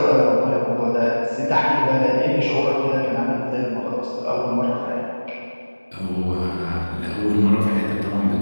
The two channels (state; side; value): inverted; both; correlation -1.00